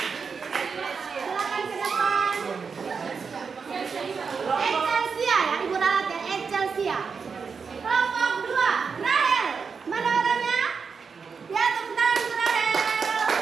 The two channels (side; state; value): left; quieter; 5.5 dB